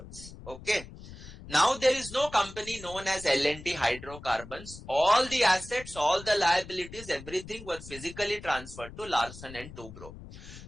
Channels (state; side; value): noise; left; rumble, 15 dB below the sound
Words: Okay. Now there is no company known as L&T hydrocarbons. All the assets, all the liabilities, everything were physically transferred to Larsen and Toubro.